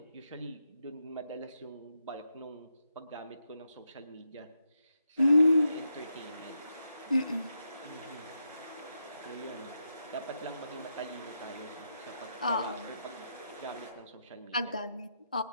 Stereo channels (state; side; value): inverted; both; correlation -0.83